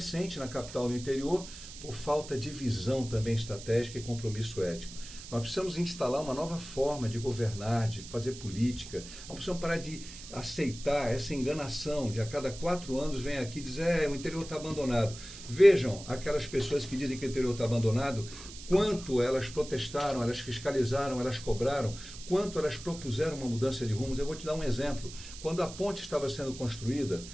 na capital e no interior, por falta de visão também estratégica e compromisso ético. Nós precisamos instalar uma nova forma de governar, de fazer política. Nós precisamos parar de aceitar essa enganação de a cada 4 anos vem aqui dizer o interior está abandonado. Vejam aquelas pessoas que dizem que o interior está abandonado, quanto elas protestaram, elas fiscalizaram, elas cobraram, quanto elas propuseram uma mudança de rumos. Eu vou te dar um exemplo. Quando a ponte estava sendo construída,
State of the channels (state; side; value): noise; right; hiss, 14 dB below the sound